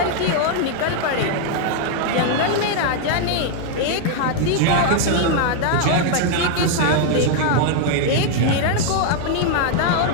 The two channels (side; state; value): both; different; correlation 0.00